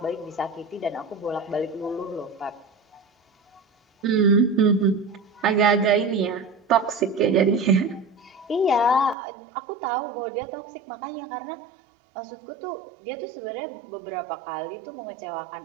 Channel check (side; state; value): left; drops out; at 9.2 s